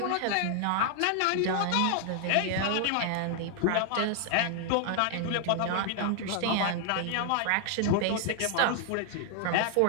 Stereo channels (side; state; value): both; different; correlation 0.00